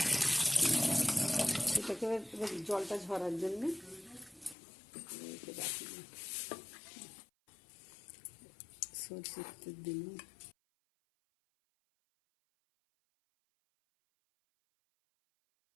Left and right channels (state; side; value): drops out; right; at 4.5 s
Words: সেটাকে এবার জলটা ঝরার জন্যে রাখি। সরষের তেল দিলাম,